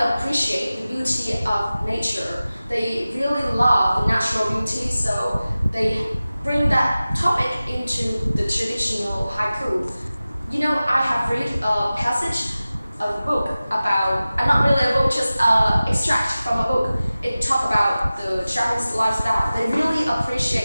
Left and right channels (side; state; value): both; inverted; correlation -0.96